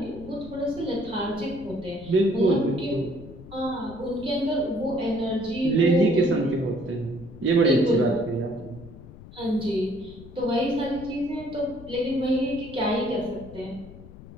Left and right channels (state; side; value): noise; left; rumble, 17 dB below the sound